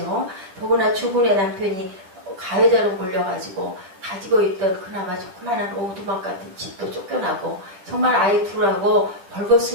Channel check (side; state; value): left; late; 10 ms